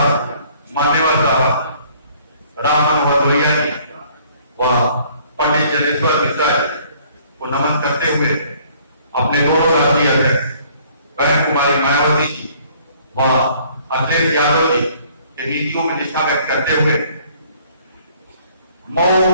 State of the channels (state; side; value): inverted; both; correlation -0.59